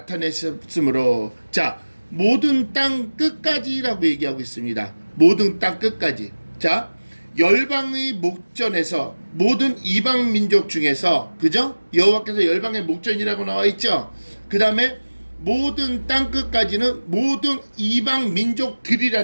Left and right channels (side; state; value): both; inverted; correlation -1.00